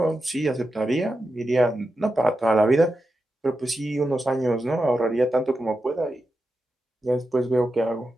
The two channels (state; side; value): normal; both; correlation 0.89